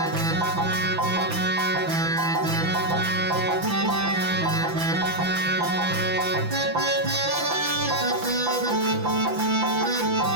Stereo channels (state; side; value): late; left; 5.9 ms